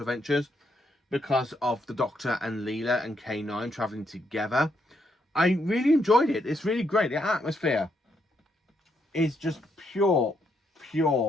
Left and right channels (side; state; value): both; normal; correlation 0.76